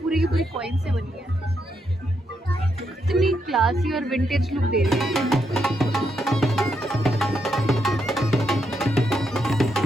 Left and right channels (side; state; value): both; normal; correlation 0.80